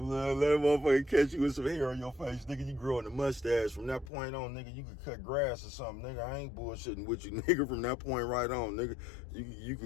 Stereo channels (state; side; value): drops out; right; at 4.1 s